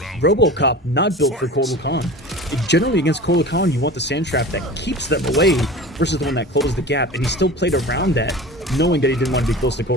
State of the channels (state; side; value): normal; both; correlation 0.36